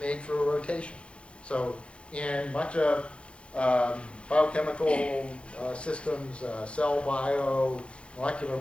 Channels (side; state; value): right; late; 0.059 ms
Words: through a rotation. So in much of biochemical systems, cell bio, molecular